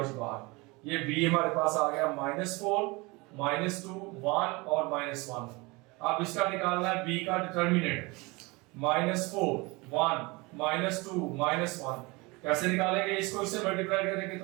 बाहर। ये बी हमारे पास आ गया -4 -2 1 और -1। अब इसका निकालना है बी का डिटरमिनेंट -4 1 -2 -1। कैसे निकालेंगे, इसको इससे मल्टीप्लाई करेंगे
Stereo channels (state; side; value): quieter; left; 25.2 dB